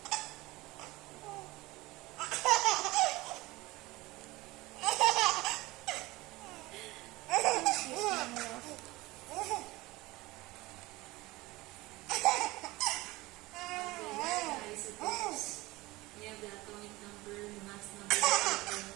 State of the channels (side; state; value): left; quieter; 20.6 dB